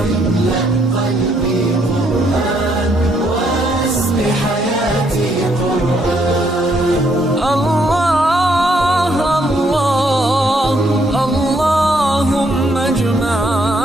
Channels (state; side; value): normal; both; correlation 0.72